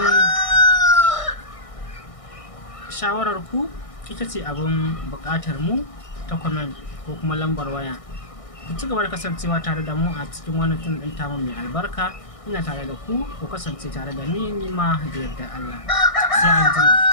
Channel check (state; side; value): late; right; 1.6 ms